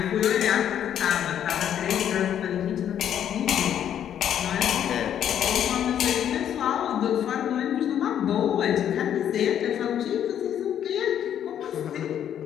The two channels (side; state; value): right; quieter; 9.8 dB